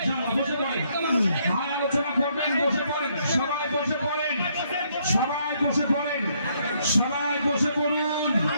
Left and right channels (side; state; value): both; inverted; correlation -0.71